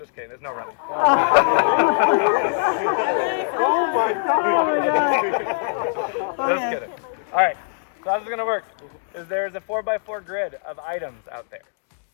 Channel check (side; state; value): right; silent; digital silence